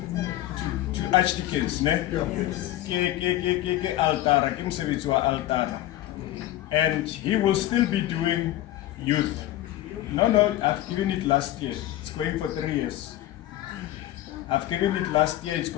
archdeacons, ne? Ke altara, ke mosebetsi wa altara. And he will still be doing youth. No, I've given it last year. It's going for 3 years. I've given it last year, it's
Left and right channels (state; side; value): quieter; right; 14.5 dB